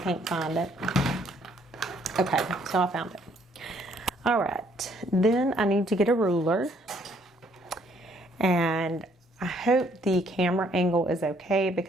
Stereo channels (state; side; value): normal; both; correlation 0.65